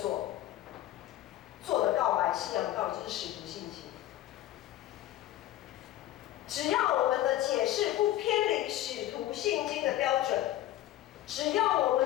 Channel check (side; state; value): right; quieter; 13.9 dB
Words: 做的告白信仰告白，就是使徒信经。只要我们的解释不偏离使徒信经的标准，只要我